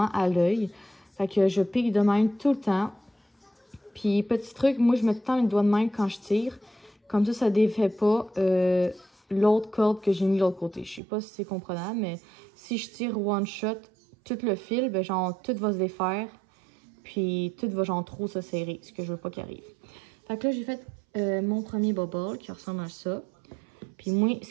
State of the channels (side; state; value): left; drops out; at 11.0 s